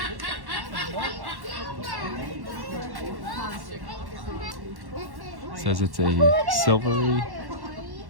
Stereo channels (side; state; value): left; late; 1.1 ms